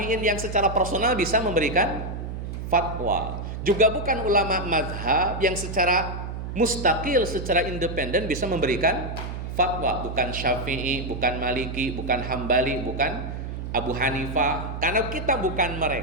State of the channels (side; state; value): right; noise; hum, 6 dB below the sound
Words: yang secara personal bisa memberikan fatwa. Juga bukan ulama mazhab yang secara mustaqil, secara independen bisa memberikan fatwa. Bukan Syafi'i, bukan Maliki, bukan Hambali, bukan Abu Hanifah. Karena kita bukan